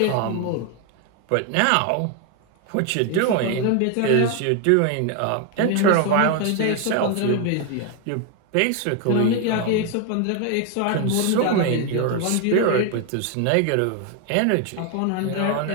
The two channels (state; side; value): different; both; correlation 0.01